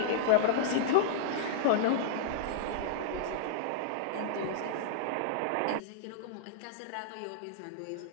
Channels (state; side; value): different; both; correlation -0.02